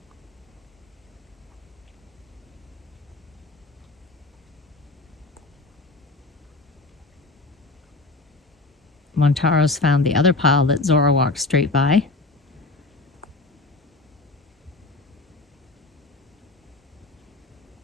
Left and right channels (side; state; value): right; quieter; 3.2 dB